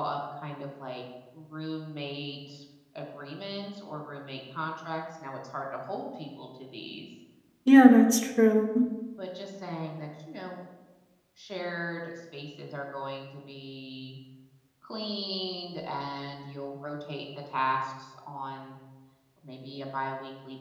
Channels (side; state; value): both; identical; correlation 1.00